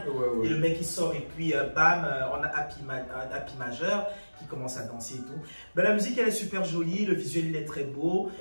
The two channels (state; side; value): inverted; both; correlation -1.00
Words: Et le mec il sort et puis bam, on a un Happy majeur qui commence à danser et tout. La musique elle est super jolie, le visuel il est très beau